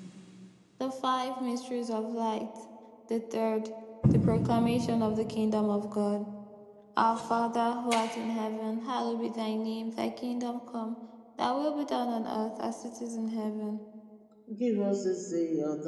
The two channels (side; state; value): both; identical; correlation 1.00